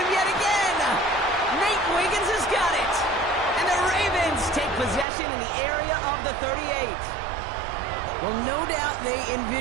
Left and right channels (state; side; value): drops out; left; at 5.1 s